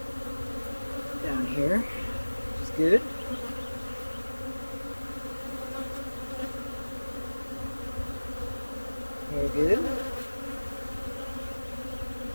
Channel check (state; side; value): inverted; both; correlation -1.00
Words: down here, which is good. Very good.